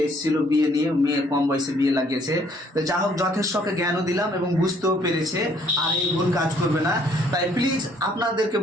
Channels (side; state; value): both; normal; correlation 0.63